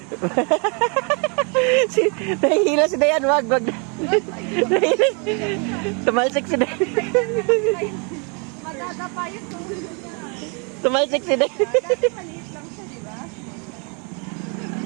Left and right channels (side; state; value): left; quieter; 35.0 dB